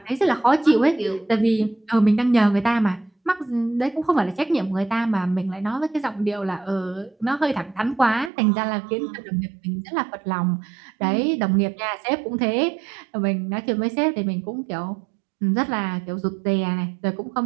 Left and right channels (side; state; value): left; drops out; at 8.3 s